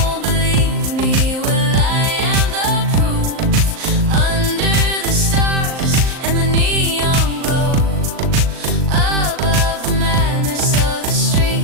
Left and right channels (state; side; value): late; left; 38 ms